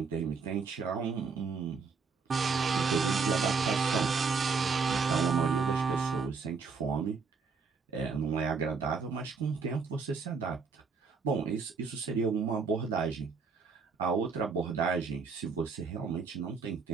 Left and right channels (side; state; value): left; quieter; 5.0 dB